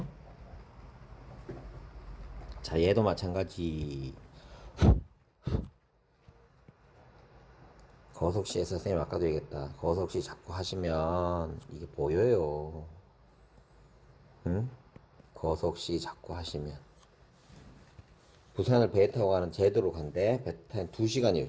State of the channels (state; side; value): identical; both; correlation 1.00